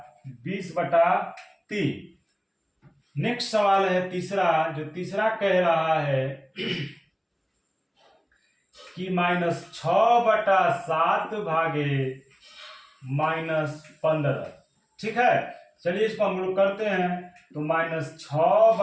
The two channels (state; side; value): identical; both; correlation 1.00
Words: 20/3। नेक्स्ट सवाल है तीसरा, जो तीसरा कह रहा है कि -6/7 भागे -15। ठीक है, चलिए इसको हम लोग करते हैं। तो